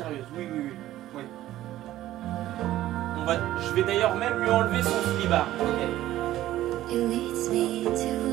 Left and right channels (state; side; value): quieter; left; 14.3 dB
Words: Oui. Je vais d'ailleurs même lui enlever son slibard. Okay. It leads me to